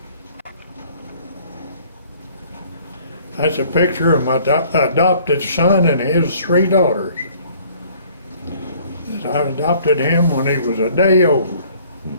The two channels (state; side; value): inverted; both; correlation -0.56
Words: That's a picture of my adopted son and his 3 daughters. I adopted him when he was a day old.